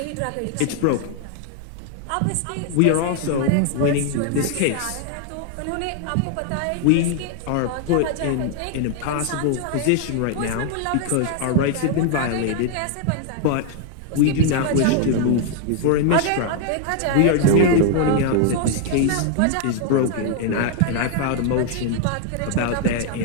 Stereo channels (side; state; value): both; different; correlation 0.00